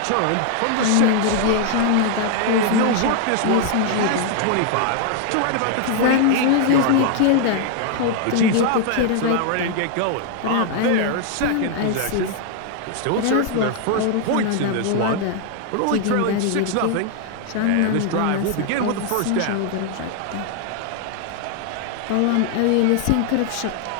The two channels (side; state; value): both; different; correlation 0.00